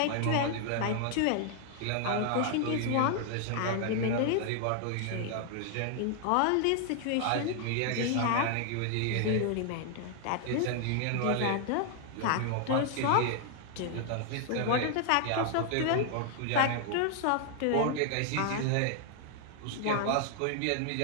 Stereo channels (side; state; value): both; different; correlation 0.00